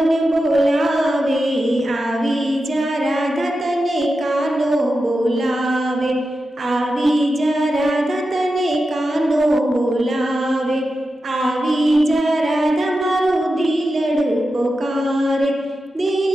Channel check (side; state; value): both; normal; correlation 0.91